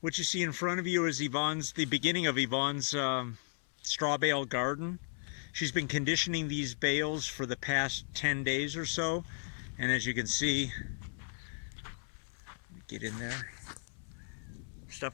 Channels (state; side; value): silent; right; 54 dB below the other